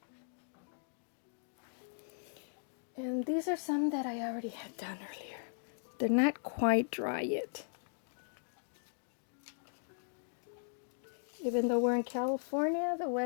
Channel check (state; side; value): silent; right; digital silence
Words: And these are some that I already had done earlier. They're not quite dry yet. Even though we're in California, the